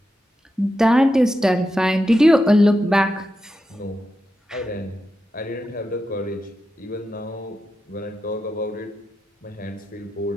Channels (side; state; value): both; normal; correlation 0.88